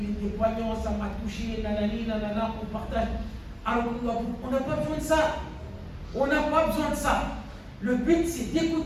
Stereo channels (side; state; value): both; identical; correlation 1.00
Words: était poignant, ça m'a touché, nanani, nanana, on partage. Alors, on n'a pas besoin de ça. On n'a pas besoin de ça. Le but, c'est